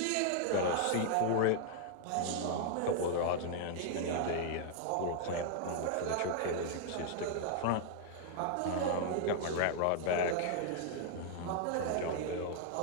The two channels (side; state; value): both; different; correlation -0.01